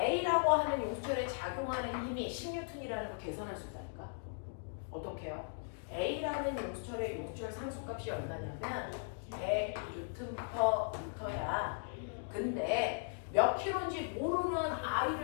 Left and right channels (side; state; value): right; silent; digital silence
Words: 하는 용수철에 작용하는 힘이 10N이라는 거 계산할 수 있다니까. 어떻게 해요? A라는 용수철의 용수철 상수값이 얼마냐면 100Nm/m야. 근데 몇 킬로인지 모르는